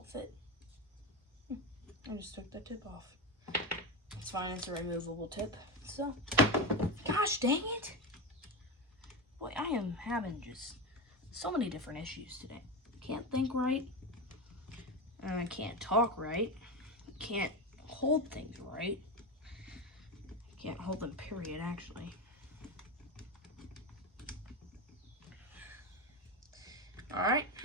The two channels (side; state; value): both; normal; correlation 0.18